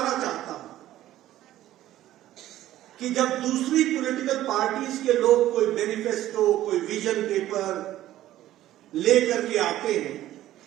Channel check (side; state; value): left; quieter; 13.9 dB